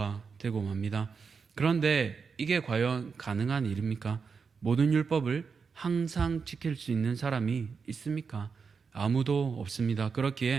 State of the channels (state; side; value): quieter; left; 5.5 dB